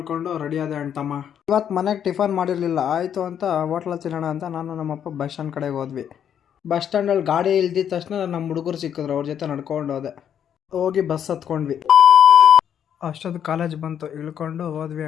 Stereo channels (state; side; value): quieter; right; 9.0 dB